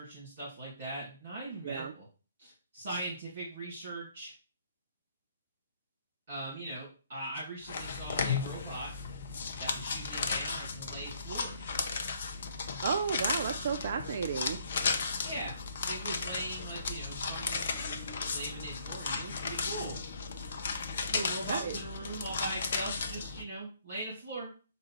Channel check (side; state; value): both; inverted; correlation -0.65